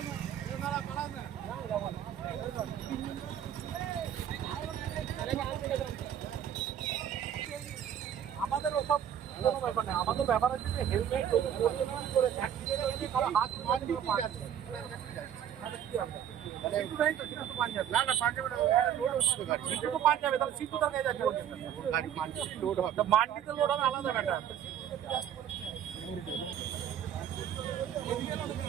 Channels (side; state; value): left; quieter; 9.7 dB